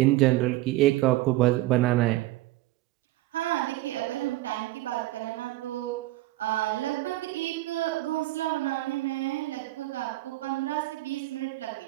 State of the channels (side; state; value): left; quieter; 17.5 dB